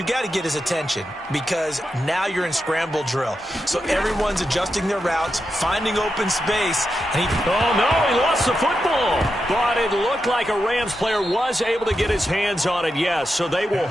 got to get his attention, because now you're in scramble drill. So everyone's adjusting their routes, finding open space, and oh no, he lost the football. But it looked like a Rams player was able to get his hands on it, yes. So they will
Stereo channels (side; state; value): both; normal; correlation 0.87